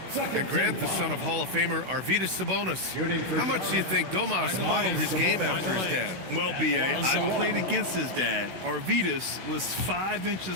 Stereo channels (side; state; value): left; late; 16 ms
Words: And Grant, the son of Hall of Famer Arvydas Sabonis. How much do you think Domas modeled his game after his dad? Well, B.A., I played against his dad. Arvydas was 5